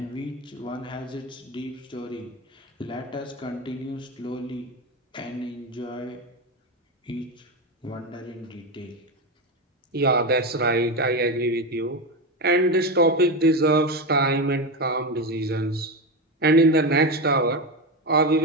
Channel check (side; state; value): both; normal; correlation 0.16